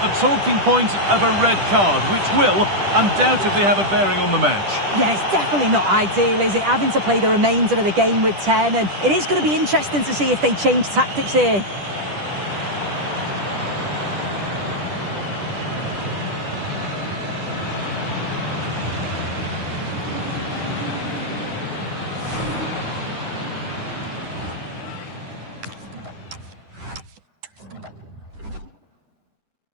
talking point of a red card, which will undoubtedly have a bearing on the match. Yeah, it's definitely not ideal, is it? Having to play the remainder of the game with 10, and it is going to be interesting to see if they change tactics here.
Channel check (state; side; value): late; left; 10 ms